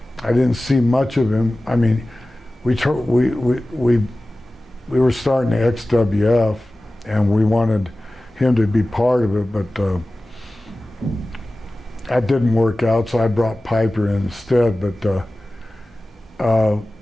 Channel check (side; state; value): both; normal; correlation 0.96